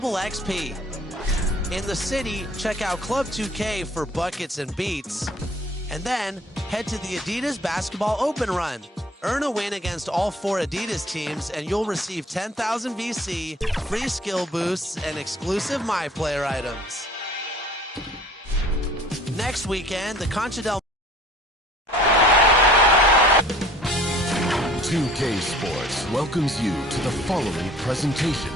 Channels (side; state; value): both; normal; correlation 0.52